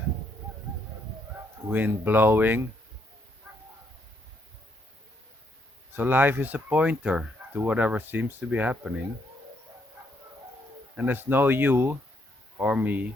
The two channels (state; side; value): normal; both; correlation 0.73